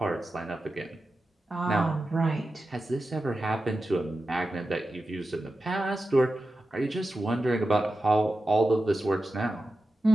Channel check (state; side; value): normal; both; correlation 0.92